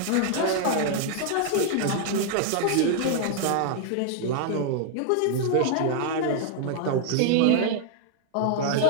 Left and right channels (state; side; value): different; both; correlation -0.01